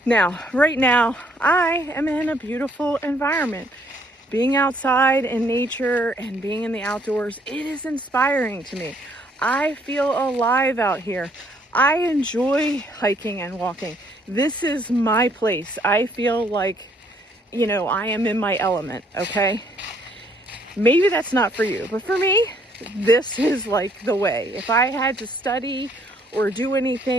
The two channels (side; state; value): both; normal; correlation 0.66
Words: Now, right now, I am in a beautiful environment. Being outside in nature and being in the outdoors, it is inspiring to me. I feel alive out here. I enjoy hiking and walking. This is my place. I feel like, you know, I am in my element, okay? Maybe that's not for you, but for me, this is like the way. If I had to study or do